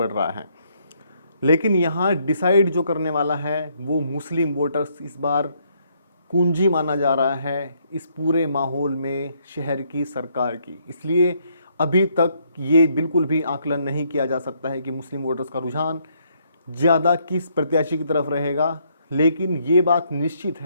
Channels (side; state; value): both; inverted; correlation -0.71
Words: रहा है। लेकिन यहाँ डिसाइड जो करने वाला है वो मुस्लिम वोटर्स इस बार कुंजी माना जा रहा है इस पूरे माहौल में शहर की सरकार की। इसलिए अभी तक ये बिल्कुल भी आकलन नहीं किया जा सकता है कि मुस्लिम वोटर्स का रुझान ज़्यादा किस प्रत्याशी की तरफ रहेगा। लेकिन ये बात निश्चित